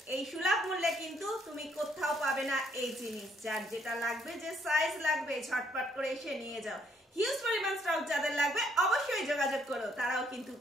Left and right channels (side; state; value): both; normal; correlation 0.69